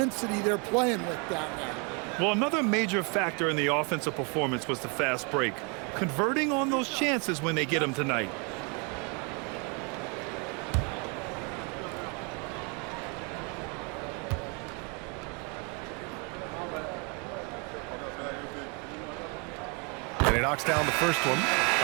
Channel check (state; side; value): quieter; left; 33.7 dB